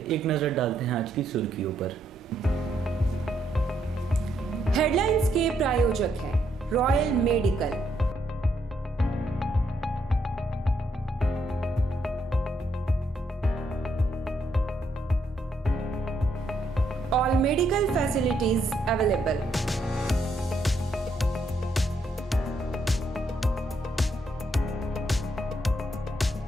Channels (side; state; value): both; normal; correlation 0.75